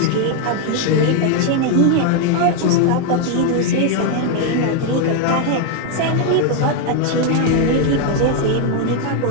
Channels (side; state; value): both; different; correlation 0.01